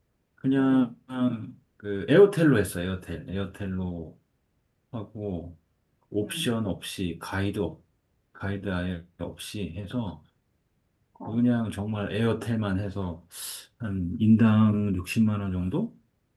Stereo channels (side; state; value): both; identical; correlation 1.00